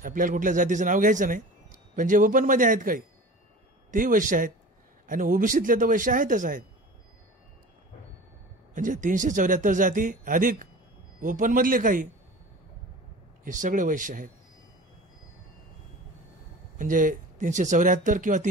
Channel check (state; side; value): normal; both; correlation 0.37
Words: आपल्याला कुठल्या जातीचं नाव घ्यायचं नाही, पण जे ओपन मध्ये आहेत काही तेही वैश्य आहेत, आणि ओबीसीतले तर वैश्य आहेतच आहेत. म्हणजे 374 जाती अधिक ओपन मधले काही, हे सगळे वैश्य आहेत. म्हणजे 374 किंवा